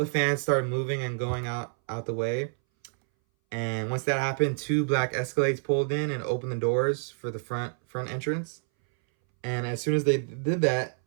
fans started moving and going out the way. And once that happened, 2 black Escalades pulled in and opened the doors for the front entrance. And as soon as they did that,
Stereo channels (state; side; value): silent; left; 59 dB below the other